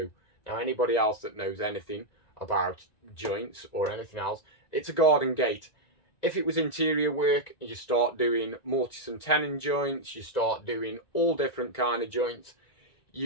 Now, anybody else that knows anything about joints or anything else, it's a garden gate. If it was interior work, you start doing mortise and tenon joints, you start doing all different kind of joints,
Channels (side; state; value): right; late; 1.9 ms